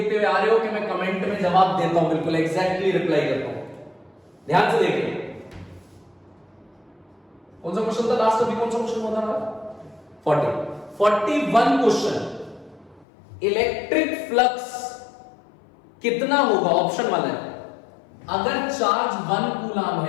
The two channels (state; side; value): drops out; right; at 13.1 s